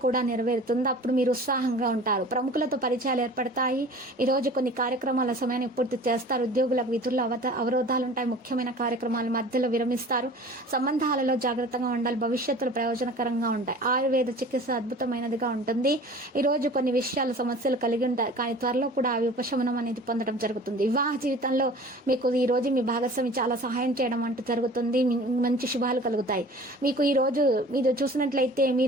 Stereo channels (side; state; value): both; normal; correlation 0.43